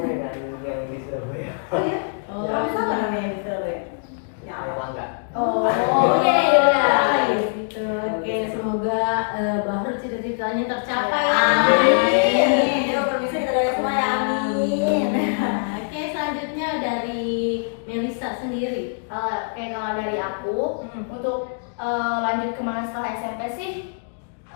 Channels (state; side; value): silent; right; digital silence